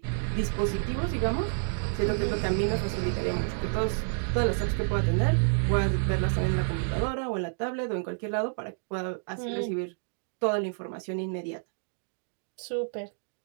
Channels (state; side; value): silent; left; digital silence